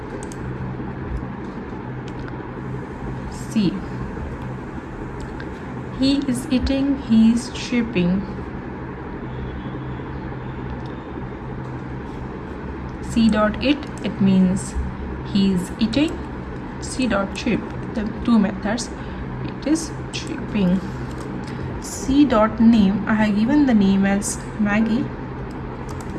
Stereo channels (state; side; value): identical; both; correlation 1.00